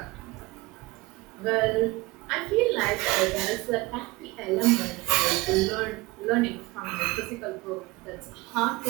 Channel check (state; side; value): quieter; left; 21.9 dB